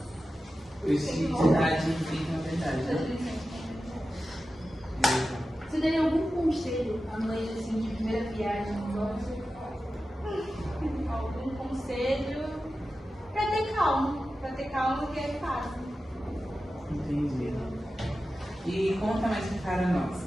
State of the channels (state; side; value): normal; both; correlation 0.93